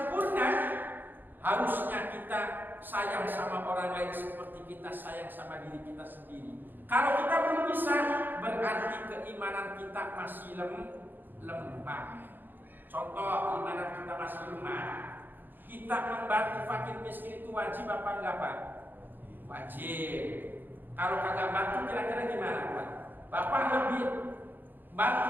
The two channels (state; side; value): late; left; 0.091 ms